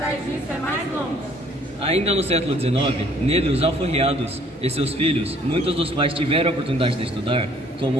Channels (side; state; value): both; normal; correlation 0.60